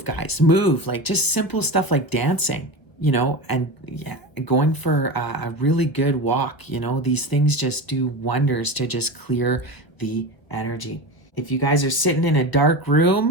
guys, move. Like just simple stuff like dancing, and yeah, going for a really good walk. These things just do wonders to just clear the energy. If you guys are sitting in a dark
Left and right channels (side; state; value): right; late; 1.2 ms